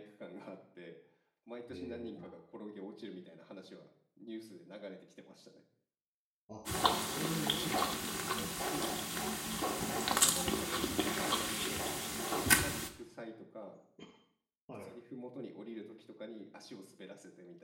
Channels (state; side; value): identical; both; correlation 1.00